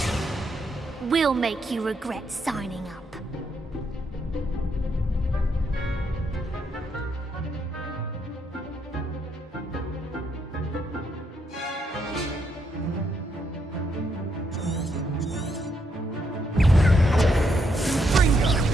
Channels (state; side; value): normal; both; correlation 0.77